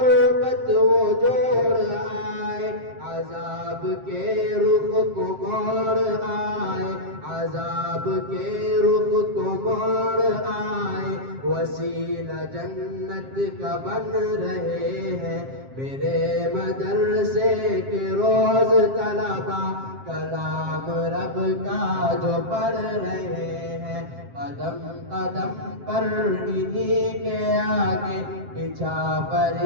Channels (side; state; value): left; late; 7.5 ms